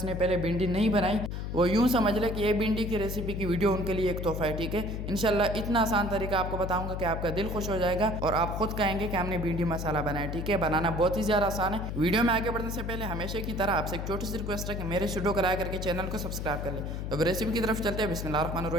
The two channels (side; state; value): left; noise; hum, 4 dB below the sound